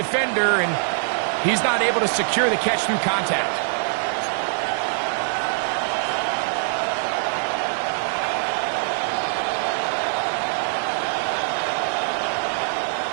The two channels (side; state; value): left; silent; digital silence